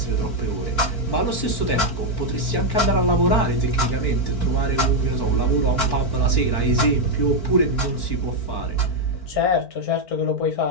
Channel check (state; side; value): late; right; 4.4 ms